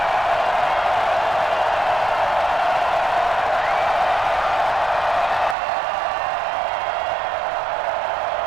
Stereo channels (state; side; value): drops out; left; at 5.6 s